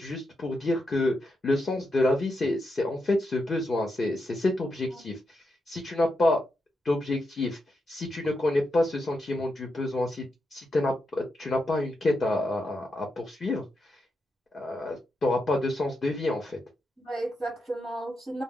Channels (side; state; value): both; normal; correlation 0.85